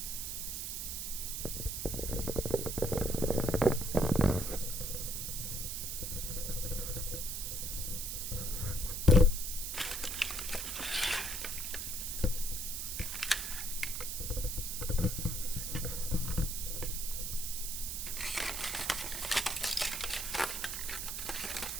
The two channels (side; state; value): right; noise; hiss, 3 dB below the sound